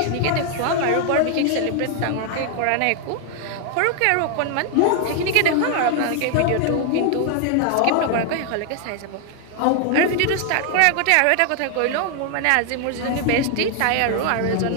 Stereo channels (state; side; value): different; both; correlation 0.00